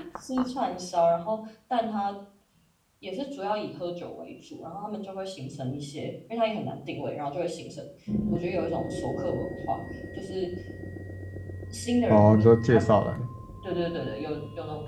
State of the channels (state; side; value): identical; both; correlation 1.00